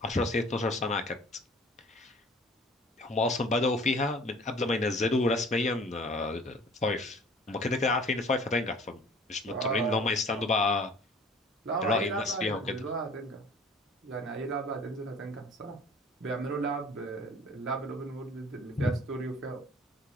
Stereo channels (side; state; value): both; normal; correlation 0.49